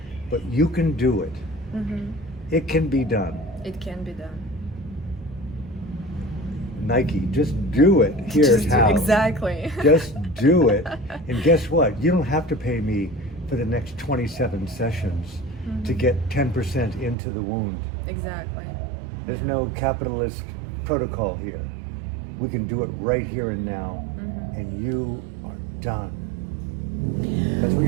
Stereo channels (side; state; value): left; drops out; at 17.2 s